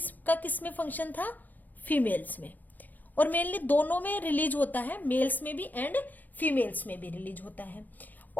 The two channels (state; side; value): late; right; 0.084 ms